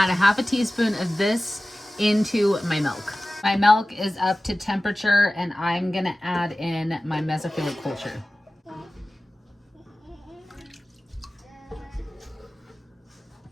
a ½ teaspoon of this into my milk. My milk is up to temperature and I'm gonna add in my mesophilic culture.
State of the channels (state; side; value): normal; both; correlation 0.96